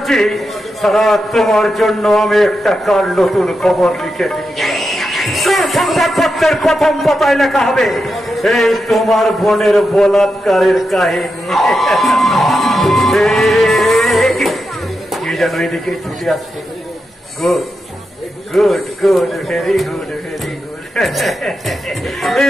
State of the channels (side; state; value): both; normal; correlation 0.87